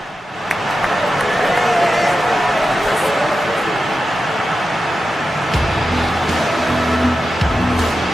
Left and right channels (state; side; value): normal; both; correlation 0.91